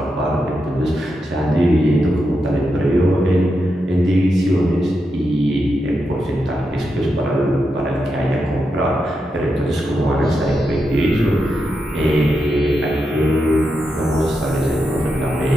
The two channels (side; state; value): both; normal; correlation 0.86